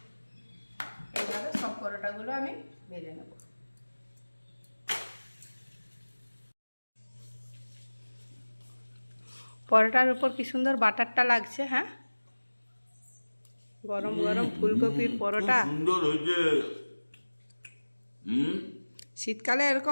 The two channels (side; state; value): both; inverted; correlation -1.00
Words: এইভাবে সব পরোটাগুলো আমি ভেজে নেব। পরোটার উপর কি সুন্দর বাটারটা লাগছে। হ্যাঁ, গরম গরম ফুলকপির পরোটা। সুন্দর হয়েছে। শীতকালে